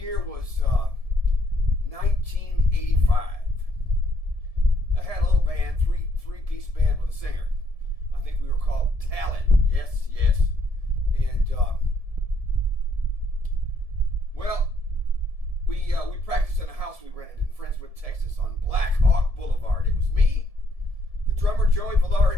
was 1985. I had a little band, three-piece band with a singer. I think we were called Talent. Yes. And we practiced in a house we rented in Friendswood, Texas, on Black Hawk Boulevard. It was me, the drummer Joey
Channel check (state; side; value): late; left; 1.7 ms